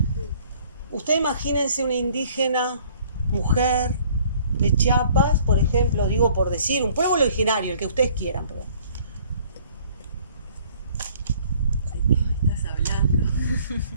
Usted imagínense una indígena mujer de Chiapas, por ejemplo, digo por decir, un pueblo originario, el que ustedes quieran, perdón. ¿De qué estás hablando?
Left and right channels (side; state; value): both; inverted; correlation -0.57